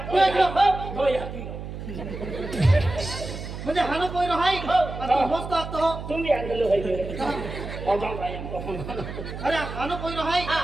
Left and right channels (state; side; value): noise; right; hum, 9 dB below the sound